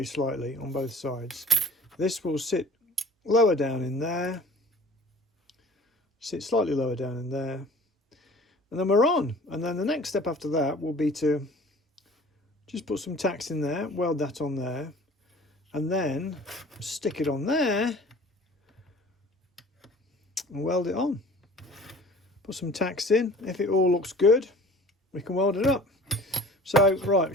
slightly on both sides. This will sit lower down in there, sit slightly lower down in there, and then we're on. And then the next step after that will be to just put some tacks in there, weld that on there, and then stick it on there and weld it on. Put some tacks in. If it all looks good, we can weld it up. So, right,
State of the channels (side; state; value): both; normal; correlation 0.46